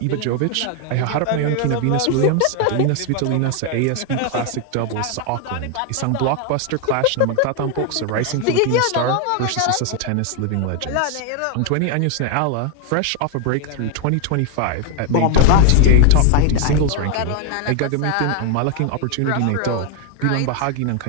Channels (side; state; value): both; different; correlation 0.01